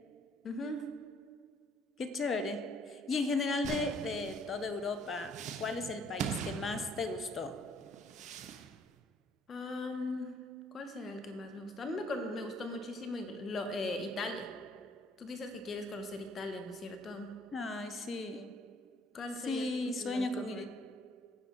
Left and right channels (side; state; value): both; normal; correlation 0.62